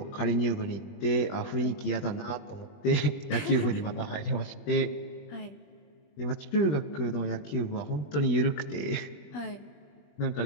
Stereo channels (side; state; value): right; late; 21 ms